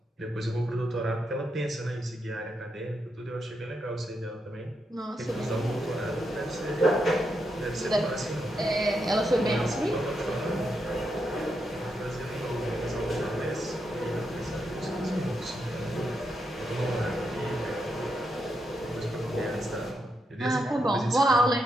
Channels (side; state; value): both; normal; correlation 0.83